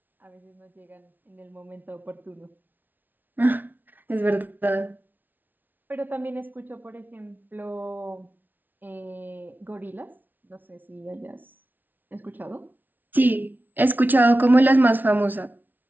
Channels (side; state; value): left; late; 0.085 ms